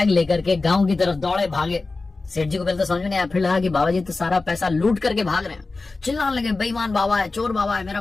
लेकर के गांव की तरफ दौड़े भागे। सेठ जी को पहले तो समझ में नहीं आया, फिर लगा कि बाबा जी तो सारा पैसा लूट करके भाग रहे हैं। चिल्लाने लगे, बेईमान बाबा है, चोर बाबा है, मेरा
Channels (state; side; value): quieter; right; 3.6 dB